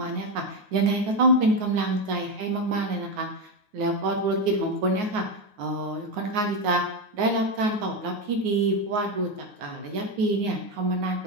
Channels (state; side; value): late; left; 9.5 ms